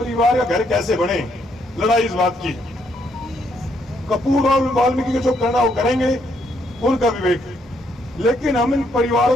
का घर कैसे बने, लड़ाई इस बात की। कपूर और वाल्मीकि को जो करना वो करेंगे, उनका विवेक, लेकिन हम इन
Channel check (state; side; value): normal; both; correlation 0.73